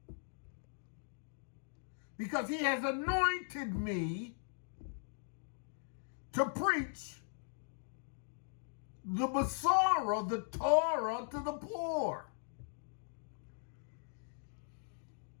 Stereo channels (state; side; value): silent; right; digital silence